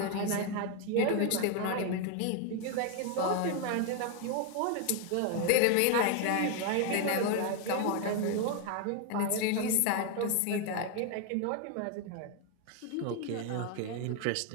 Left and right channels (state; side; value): different; both; correlation 0.01